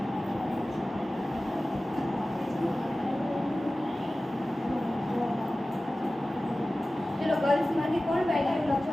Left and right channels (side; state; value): both; normal; correlation 0.96